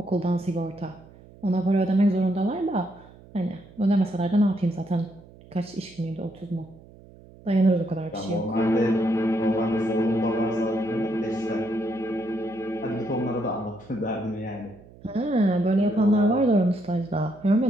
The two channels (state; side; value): noise; right; hum, 22 dB below the sound